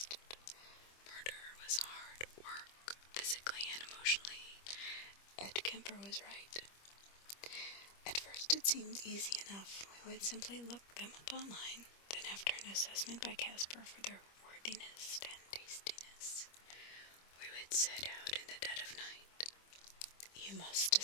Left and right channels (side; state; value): right; late; 25 ms